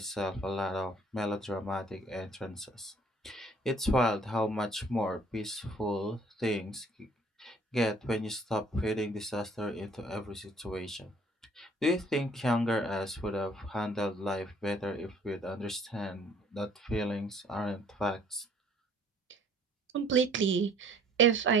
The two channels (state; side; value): normal; both; correlation 0.57